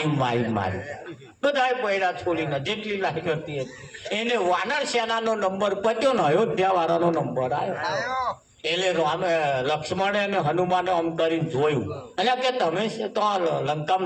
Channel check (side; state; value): both; identical; correlation 1.00